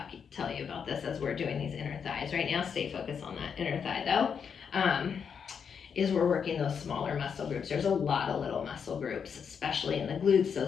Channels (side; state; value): right; quieter; 6.8 dB